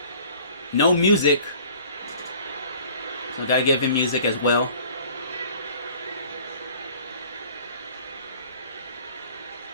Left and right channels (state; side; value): inverted; both; correlation -0.50